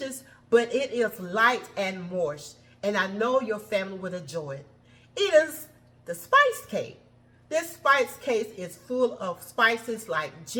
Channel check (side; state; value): both; identical; correlation 1.00